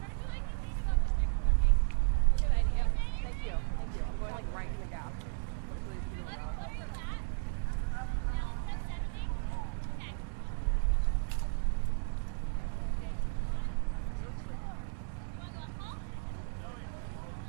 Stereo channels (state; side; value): silent; left; digital silence